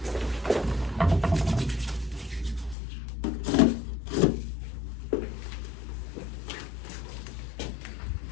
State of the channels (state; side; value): drops out; right; at 2.8 s